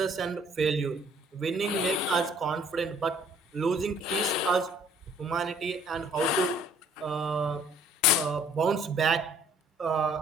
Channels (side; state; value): both; normal; correlation 0.59